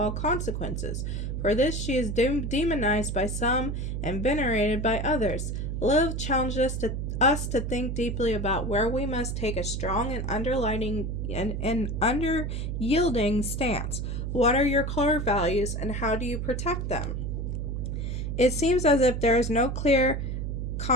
consequences. For this she is demonized by some and venerated by others. Lilith challenges us to think deeply about where we must take a strong and under-yielding stance. What are your core values and how do you protect them? It seems as if there is no clear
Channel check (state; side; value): noise; right; hum, 3 dB below the sound